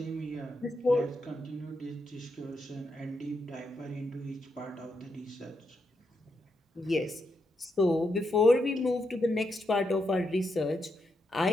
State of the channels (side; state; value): both; normal; correlation 0.82